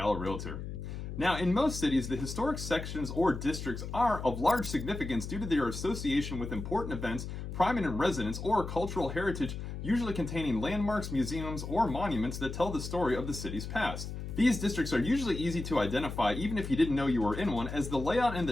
realtor. Now, in most cities, the historic sections or districts are of large significance due to their association with important events, prominent residents, or cultural heritage, usually containing landmarks, museums, or monuments that tell the story of the city's past. These districts are usually easy to identify even if you didn't know you were in one, as the layout and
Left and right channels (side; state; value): left; noise; hum, 7 dB below the sound